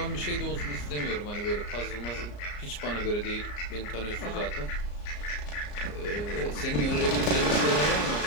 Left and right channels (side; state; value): right; late; 34 ms